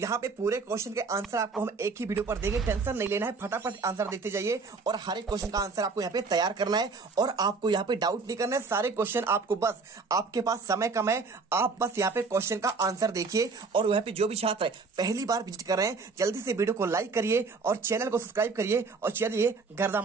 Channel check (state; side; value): quieter; left; 4.4 dB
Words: पे पूरे क्वेश्चन के आंसर आपको हम एक ही वीडियो पर देंगे, टेंशन नहीं लेना है, फटाफट आंसर देते जाइए। और हर एक क्वेश्चन का आंसर आपको यहाँ पे तैयार करना है, और आपको यहाँ पे डाउट नहीं करना है। सारे क्वेश्चन आपको, बस आपके पास समय कम है, आप बस यहाँ पे क्वेश्चन का आंसर देखिए। और यहाँ पे जो भी छात्र पहली बार विजिट कर रहे हैं जल्दी से वीडियो को लाइक करिए और चैनल को सब्सक्राइब करिए, और चलिए गर्दा